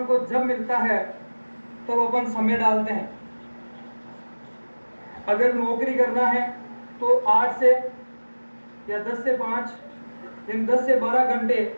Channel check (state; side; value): inverted; both; correlation -1.00